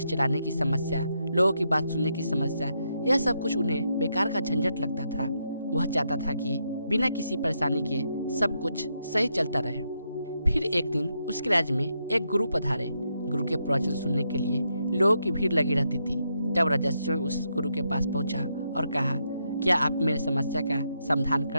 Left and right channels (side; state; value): both; inverted; correlation -0.80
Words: चलाने की समस्या, लोगों की बात सुनने की समस्या, यह सब कुछ उन्हें बेकार का झंझट लगता था। वह चाहता था कि बिना किसी परेशानी के सब कुछ सही चलता रहे। फिर एक दिन उसके राज्य में एक गुरु पधारे। गुरु के प्रवचन सुनने के लिए लोगों की भीड़ लगी रहती थी। तब राजा स्वयं उस गुरु के पास पहुंचा और कहा, क्या आप मेरे समस्या का समाधान कर